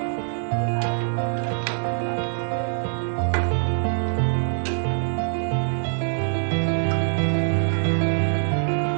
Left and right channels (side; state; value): left; silent; digital silence